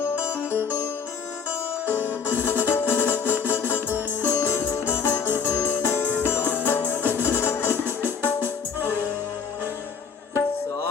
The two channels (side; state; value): right; quieter; 6.3 dB